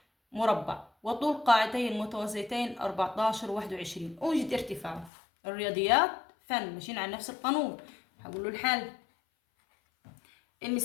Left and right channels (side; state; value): right; drops out; at 5.1 s